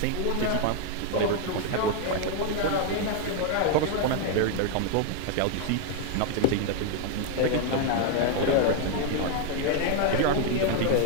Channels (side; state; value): both; different; correlation 0.00